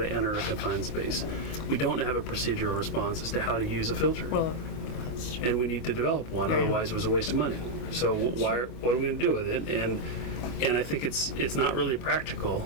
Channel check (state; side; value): late; right; 24 ms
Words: enter a confined space. We don't have a procedural response as to how to use a filter. well, that's true. And we need to develop one, Yeah. otherwise it was a waste of money. So what are we going to do with it? And I think it's not really